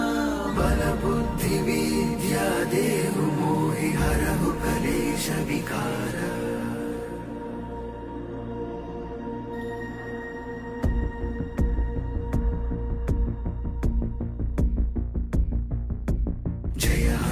బల బుద్ధి విద్యా దేహు మోహి హరహు కలేశ వికార జయ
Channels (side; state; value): both; identical; correlation 1.00